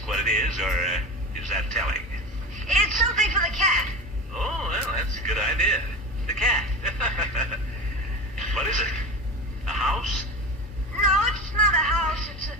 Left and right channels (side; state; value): left; noise; hum, 15 dB below the sound